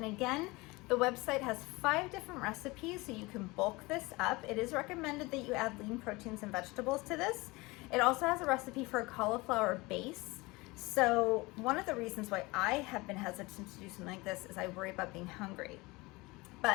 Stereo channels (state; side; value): quieter; right; 23.1 dB